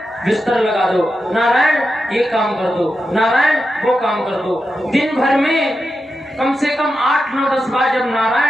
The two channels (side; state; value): both; normal; correlation 0.89